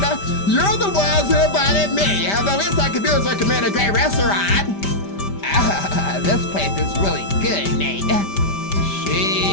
You're the ones who invited me. The least I could do is recommend a great restaurant. This place is really good, Nate.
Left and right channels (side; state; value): right; late; 5.1 ms